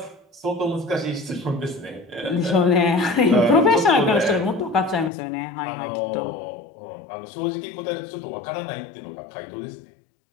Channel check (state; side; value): drops out; right; at 5.1 s